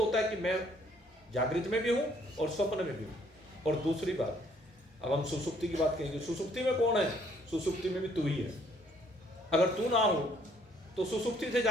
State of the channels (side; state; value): both; normal; correlation 0.64